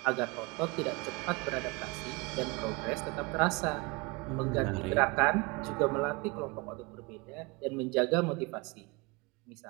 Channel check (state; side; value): quieter; left; 26.8 dB